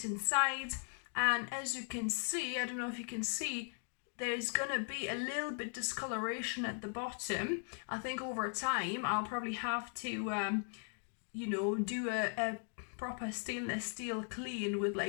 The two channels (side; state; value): right; silent; 52 dB below the other